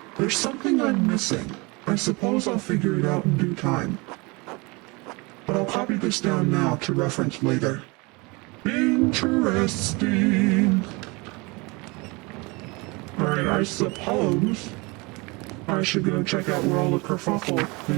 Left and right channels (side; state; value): left; quieter; 26.5 dB